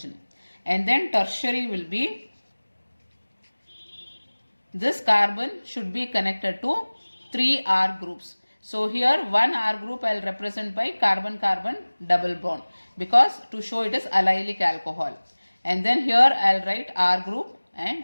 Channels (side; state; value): both; inverted; correlation -1.00